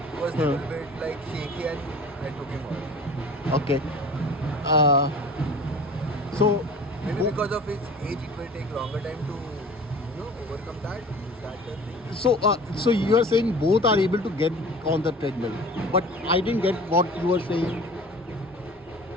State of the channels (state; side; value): normal; both; correlation 0.42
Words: was a little bit like shaky and I took him off. Okay. So Maybe because of his age, it will take longer time to overcome that. Is that the thing? so you are saying both are able to get on the treadmill, but I didn't get what you were saying.